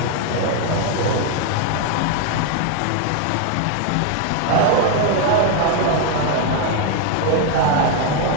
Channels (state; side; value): different; both; correlation 0.01